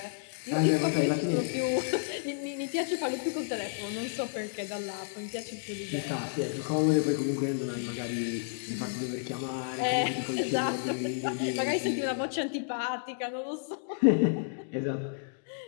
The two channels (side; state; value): right; silent; digital silence